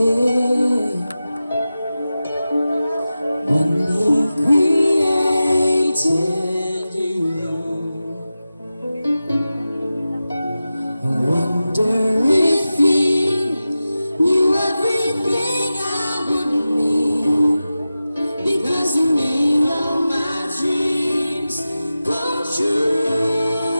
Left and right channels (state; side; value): inverted; both; correlation -0.94